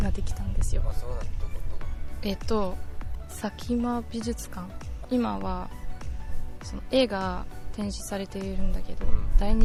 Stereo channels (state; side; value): identical; both; correlation 1.00